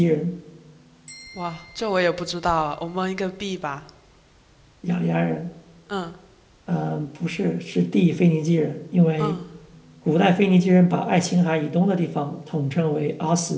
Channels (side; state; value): both; identical; correlation 1.00